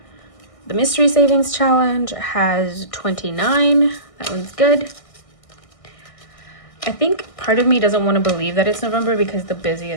The mystery savings challenge has 29. That one's good. I think part of me doesn't want to believe that it's November because the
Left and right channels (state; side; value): late; right; 1.6 ms